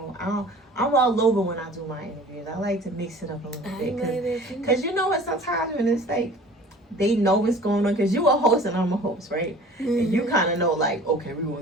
I'm all over when I do my interviews. I like to mix it up a little bit. Because, what, sometimes when it's like, they know what's going on because you a host and I'm a host, right? Mm-hmm. And you kind of know, like, okay, we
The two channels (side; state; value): both; normal; correlation 0.45